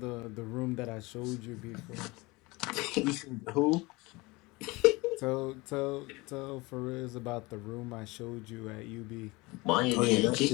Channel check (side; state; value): right; quieter; 23.7 dB